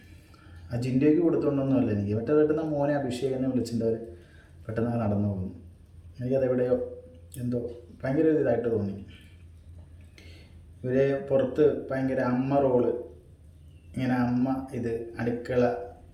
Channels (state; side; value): identical; both; correlation 1.00